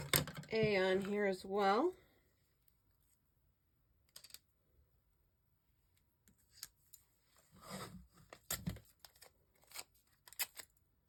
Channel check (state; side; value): identical; both; correlation 1.00